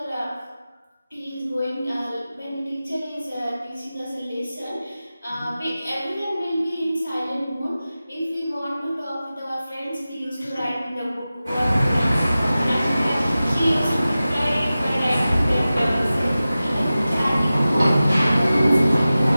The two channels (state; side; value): inverted; both; correlation -0.96